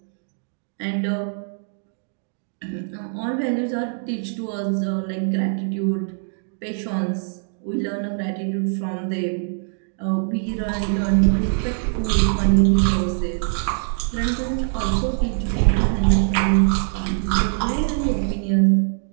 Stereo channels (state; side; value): silent; left; digital silence